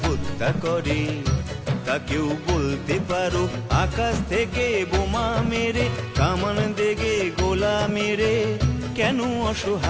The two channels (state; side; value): identical; both; correlation 1.00